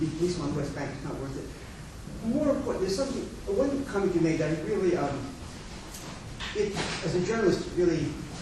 policemen on the West Bank is not worth it. More important, there's something, one comment you made that really, as a journalist, really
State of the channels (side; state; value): both; identical; correlation 1.00